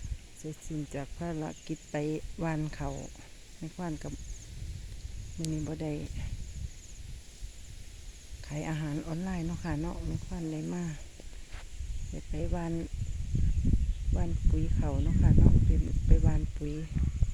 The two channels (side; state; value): both; identical; correlation 1.00